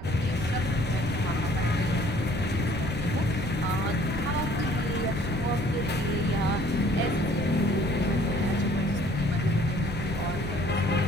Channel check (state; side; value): noise; right; rumble, 9 dB below the sound